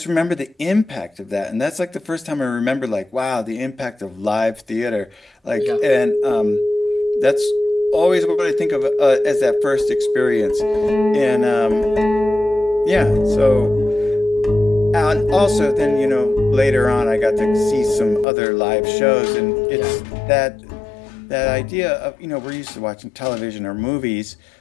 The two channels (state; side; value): drops out; right; at 18.2 s